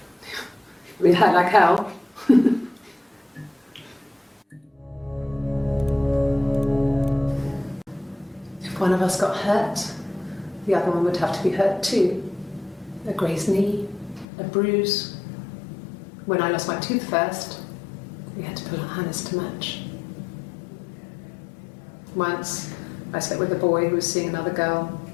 I mean, it hurt like hell. If one of us got hurt, the other one would have to be hurt too. A grazed knee, a bruise. When I lost my tooth first, we had to pull out Hannah's to match. Once, I slept with a boy who was seeing another girl.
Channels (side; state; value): right; drops out; at 14.2 s